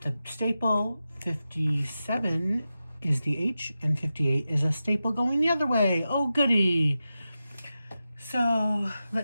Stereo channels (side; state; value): both; inverted; correlation -0.92